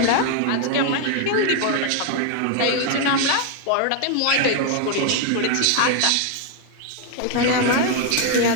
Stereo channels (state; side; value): different; both; correlation 0.01